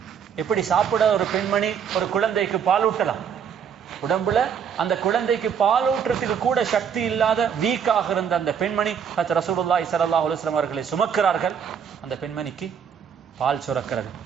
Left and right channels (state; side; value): quieter; left; 7.6 dB